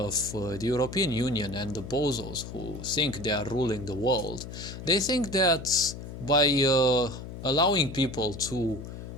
the European Union and the bozos who think they are ruling the world, they think that by allowing people to,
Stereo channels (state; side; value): noise; left; hum, 10 dB below the sound